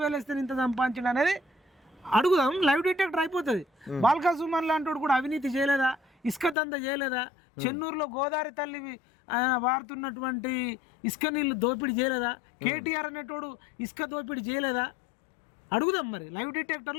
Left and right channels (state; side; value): drops out; right; at 6.6 s